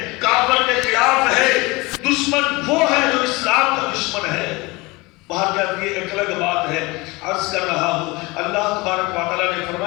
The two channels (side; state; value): right; quieter; 23.8 dB